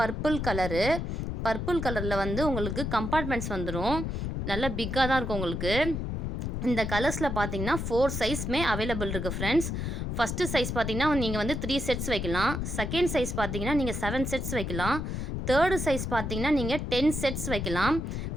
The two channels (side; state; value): left; noise; rumble, 3 dB below the sound